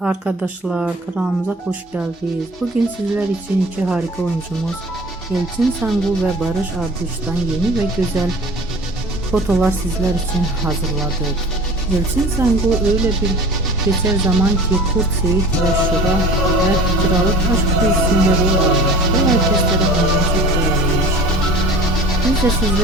kanalımıza hoş geldiniz. Bugün sizler için iki harika oyuncumuz Elçin Sangu ve Barış Arduç'tan yeni ve güzel fotolar sizler için hazırladık. Elçin Sangu öyle bir geçer zaman ki Kurt Seyit ve Şura ve Kralık Aşk dizisinde rol almış ve herkeslere çok beğenilmiş. Biz de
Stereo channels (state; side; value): normal; both; correlation 0.41